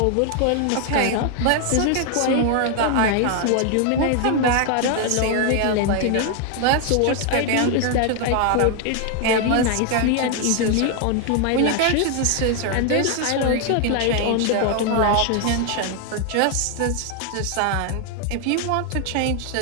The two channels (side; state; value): both; different; correlation 0.00